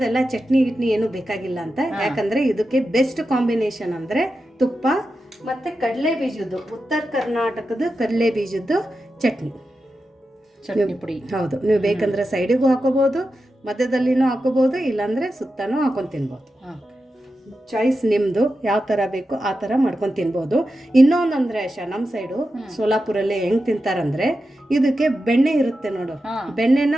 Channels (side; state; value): both; normal; correlation 0.90